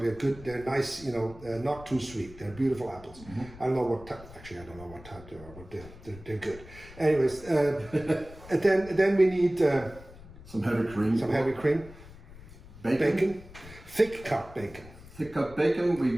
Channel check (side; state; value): left; noise; rumble, 18 dB below the sound